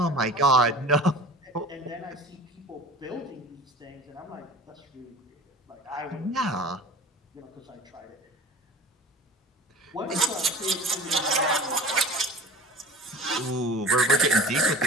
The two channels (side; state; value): both; normal; correlation 0.41